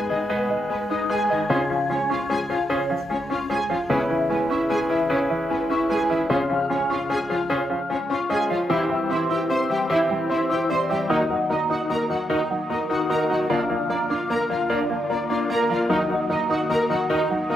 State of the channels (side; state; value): both; normal; correlation 0.83